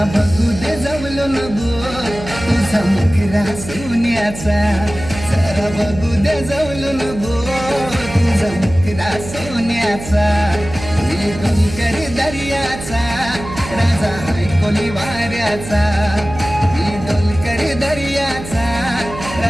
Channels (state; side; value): noise; right; hum, 11 dB below the sound